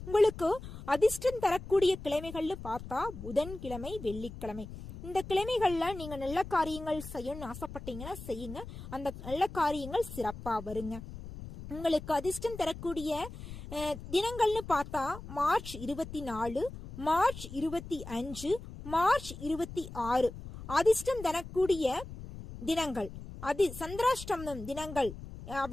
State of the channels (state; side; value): noise; left; rumble, 12 dB below the sound